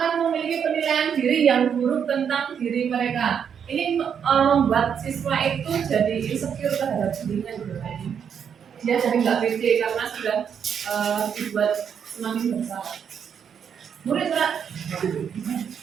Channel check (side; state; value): left; quieter; 7.7 dB